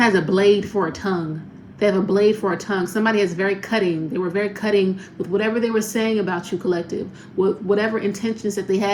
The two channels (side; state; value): both; identical; correlation 1.00